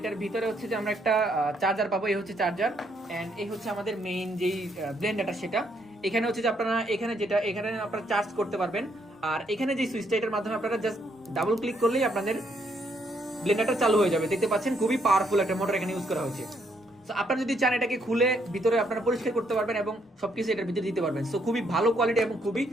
ভিতরে হচ্ছে যে আমরা একটা চার্জার পাবো। এই হচ্ছে চার্জার, অ্যান্ড এই হচ্ছে আমাদের মেইন যেই ব্লেন্ডারটা, সেটা এখানে হচ্ছে যে আপনারা এখানে আপনারা চার্জ করতে পারবেন। আর এখানে যে সুইচটা, এটার মাধ্যমে আপনারা জাস্ট ডাবল ক্লিক করলেই আপনাদের ব্লেন্ডারটা চালু হয়ে যাবে। দেখতে পাচ্ছেন খুবই পাওয়ারফুল একটা মোটর এখানে ইউজ করা হয়েছে। সো আপনারা যদি চান এটাকে খুলে ভিতরে আপনারা পরিষ্কার করতে পারবেন এবং সবকিছু এটার ভিতরে দিতে পারবেন। সো খুবই ভালো কোয়ালিটি এবং খুবই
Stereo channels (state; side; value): normal; both; correlation 0.72